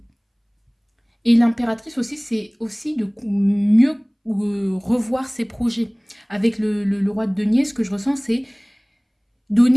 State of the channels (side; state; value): both; identical; correlation 1.00